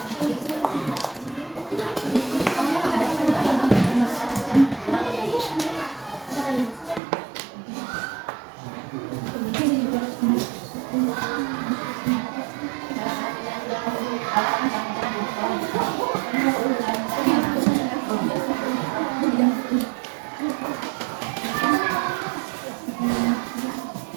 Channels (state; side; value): drops out; left; at 7.0 s